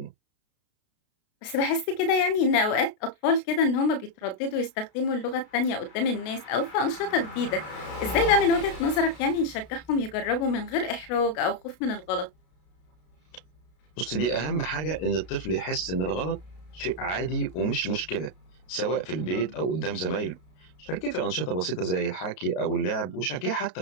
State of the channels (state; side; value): late; right; 32 ms